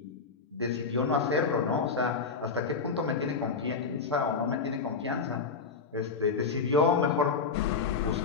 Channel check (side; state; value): right; quieter; 5.0 dB